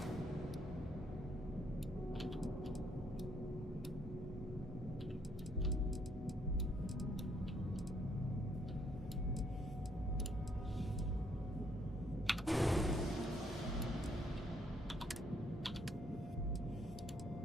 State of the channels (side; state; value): both; normal; correlation 0.69